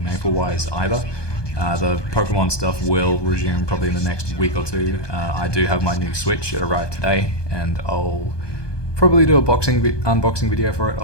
Maple wise either. The Pokemon stuff will resume probably in the next week or two. I do have my new Switch. It arrived today, and I'll probably do a unboxing video for it.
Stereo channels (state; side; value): late; right; 1.2 ms